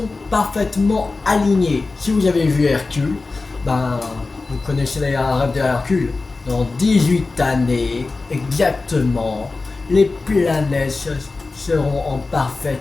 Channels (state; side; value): quieter; right; 3.7 dB